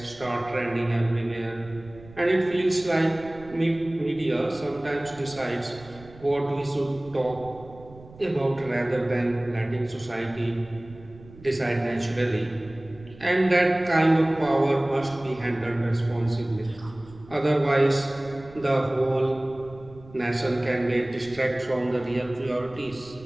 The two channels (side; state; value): right; noise; rumble, 20 dB below the sound